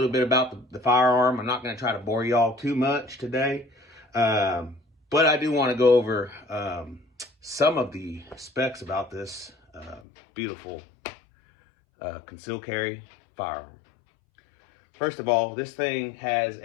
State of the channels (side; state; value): right; drops out; at 10.0 s